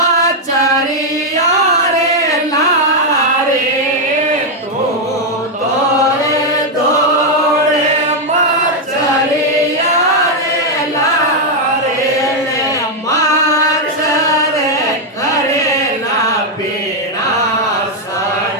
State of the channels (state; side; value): normal; both; correlation 0.01